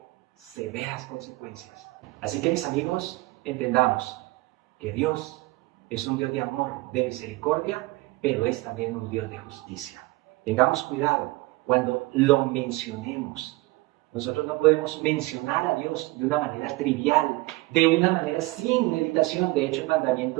severas consecuencias. Así que, mis amigos, entendamos que Dios es un Dios de amor, de misericordia, pero es también un Dios de justicia. Tengamos cuidado cuando lo mencionemos. Nosotros no podemos mencionar a Dios de una manera trivial, de una manera sin meditación. De hecho, el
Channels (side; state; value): left; quieter; 21.3 dB